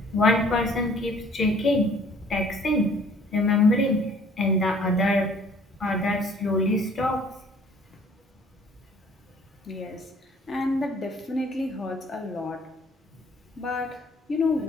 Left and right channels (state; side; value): normal; both; correlation 0.55